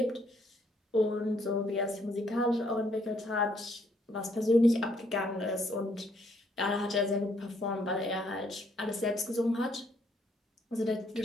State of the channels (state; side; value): normal; both; correlation 0.69